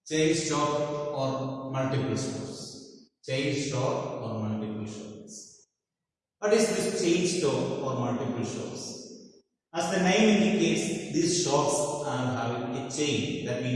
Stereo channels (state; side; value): identical; both; correlation 1.00